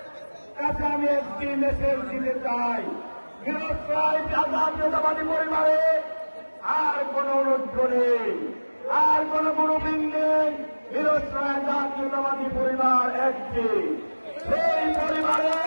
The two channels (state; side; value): inverted; both; correlation -1.00